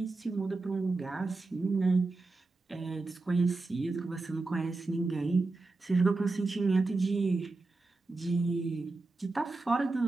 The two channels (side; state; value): left; quieter; 3.4 dB